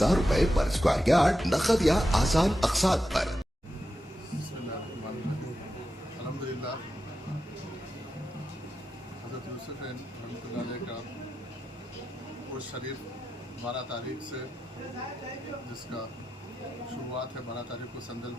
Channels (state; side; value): normal; both; correlation 0.89